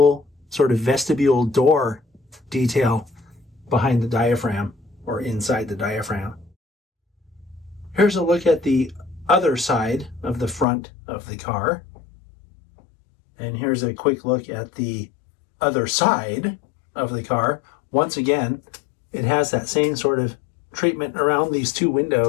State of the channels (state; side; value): drops out; right; at 10.7 s